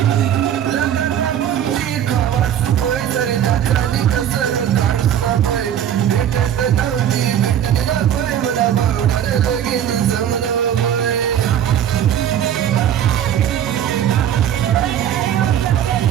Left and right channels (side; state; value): left; quieter; 9.9 dB